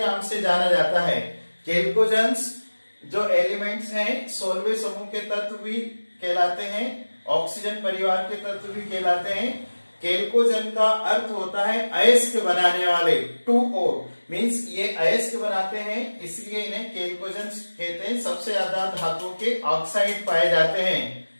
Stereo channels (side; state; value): both; inverted; correlation -1.00